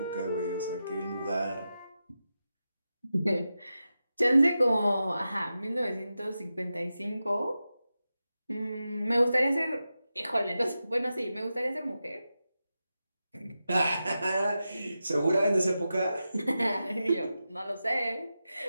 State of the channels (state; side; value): inverted; both; correlation -0.91